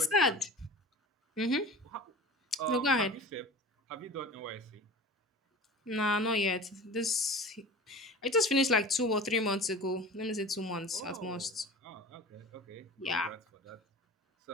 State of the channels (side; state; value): both; normal; correlation 0.38